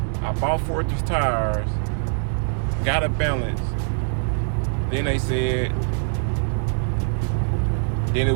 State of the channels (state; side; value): silent; left; digital silence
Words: I bought 4 of these tires, got it balanced. Then they said, then it